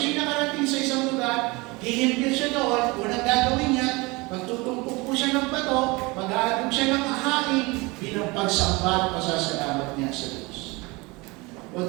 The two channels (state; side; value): quieter; left; 24.7 dB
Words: nakarating sa isang lugar, hihimpil siya doon, unang gagawin niya, magtutumpok po siya ng bato, mag-aalog siya ng ahain, bilang pagsamba at pasasalamat niya sa Diyos.